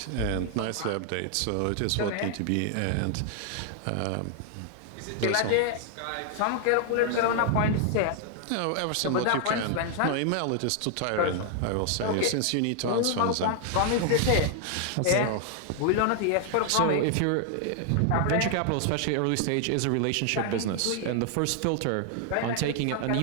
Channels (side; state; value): both; different; correlation 0.00